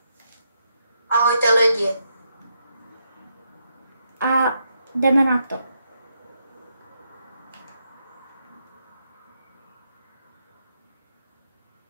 Ahojte lidi. A jdeme na to.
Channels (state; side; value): inverted; both; correlation -0.80